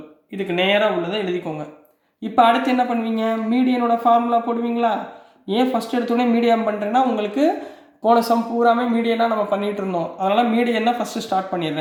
இதுக்கு நேராக உள்ளதை எழுதிக்கோங்க. இப்போ அடுத்து என்ன பண்ணுவீங்க? மீடியனோட ஃபார்முலா போடுவீங்களா? ஏன் ஃபஸ்ட் எடுத்தோடனே மீடியம் பண்ணுறேன்னா, உங்களுக்கு போன சம் பூராமே மீடியனாக நம்ம பண்ணிகிட்டு இருந்தோம். அதனால் மீடியன்னா ஃபஸ்ட்டு ஸ்டார்ட்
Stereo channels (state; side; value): identical; both; correlation 1.00